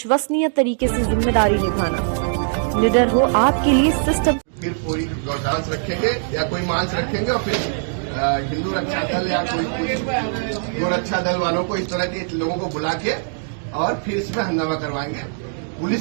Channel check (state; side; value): silent; left; digital silence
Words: तरीके से जिम्मेदारी निभाना। निडर हो आपके लिए सिस्टम। फिर कोई गौदांस रखेंगे या कोई मांस रखेंगे और फिर हिंदू रक्षा दल या कोई गोरक्षा दल वालों को इस तरह के लोगों को बुला के और फिर इसमें हंगामा करवाएंगे।